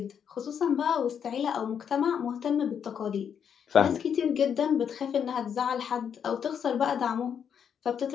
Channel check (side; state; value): right; quieter; 7.9 dB